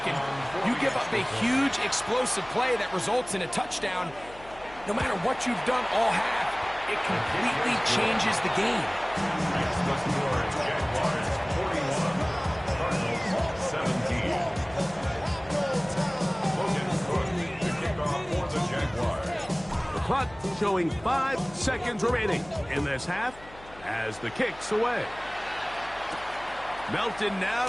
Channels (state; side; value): noise; left; hum, 21 dB below the sound